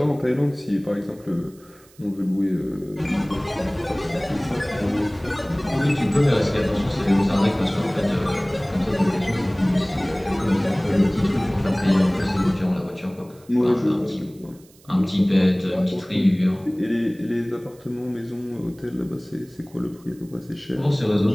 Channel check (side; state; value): right; noise; hiss, 28 dB below the sound